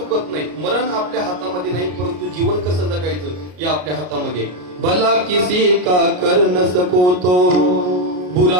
नाही. मरण आपल्या हातामध्ये नाही परंतु जीवन कसं जगायचं हे आपल्या हातामध्ये. भला किसी का कर न सको तो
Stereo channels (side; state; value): left; late; 33 ms